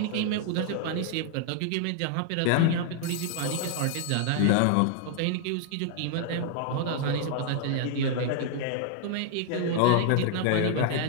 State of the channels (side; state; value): both; different; correlation 0.00